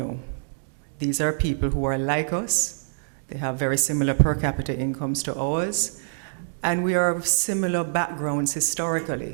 These are people who are like us. They have very similar per capita incomes to ours, and we are of similar backgrounds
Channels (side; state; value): left; silent; digital silence